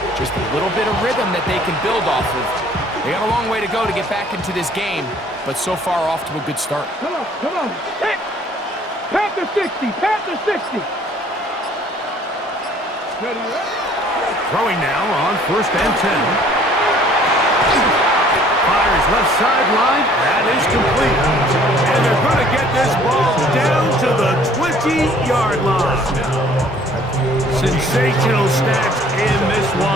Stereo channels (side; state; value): both; normal; correlation 0.56